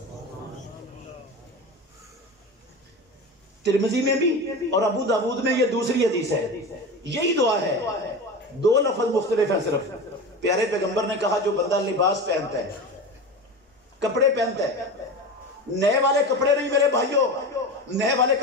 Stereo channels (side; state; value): both; normal; correlation 0.27